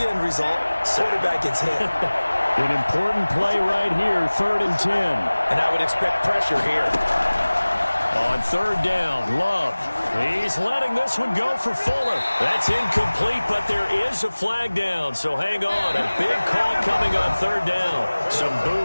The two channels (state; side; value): inverted; both; correlation -1.00